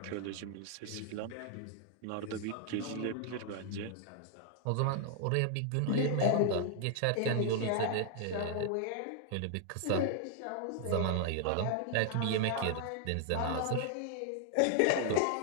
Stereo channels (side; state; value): both; different; correlation 0.00